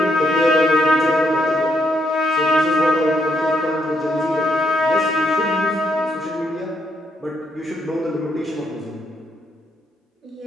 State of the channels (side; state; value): both; normal; correlation 0.76